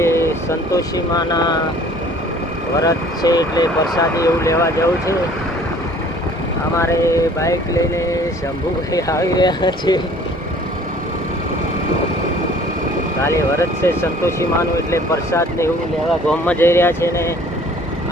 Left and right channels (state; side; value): normal; both; correlation 0.52